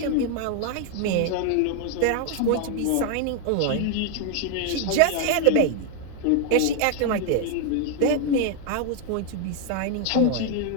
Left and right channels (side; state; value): both; different; correlation 0.00